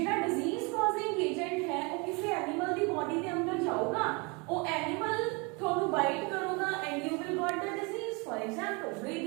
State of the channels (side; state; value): left; quieter; 29.8 dB